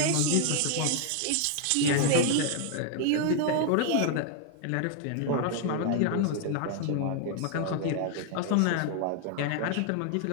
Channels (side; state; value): both; different; correlation 0.00